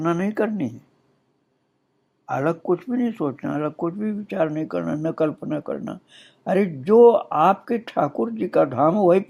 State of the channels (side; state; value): both; identical; correlation 1.00